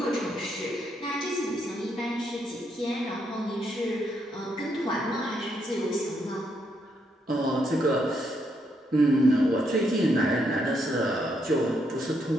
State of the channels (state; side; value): normal; both; correlation 0.77